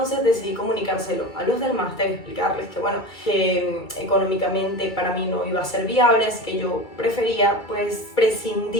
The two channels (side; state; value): right; late; 2.3 ms